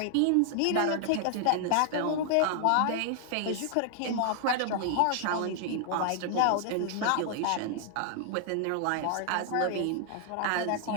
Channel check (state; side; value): different; both; correlation 0.00